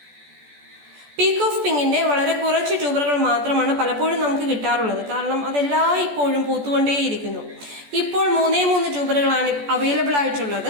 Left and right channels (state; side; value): late; left; 14 ms